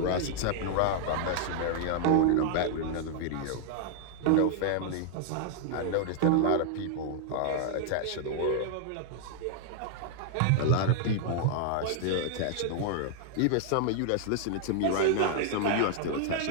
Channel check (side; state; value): both; different; correlation 0.00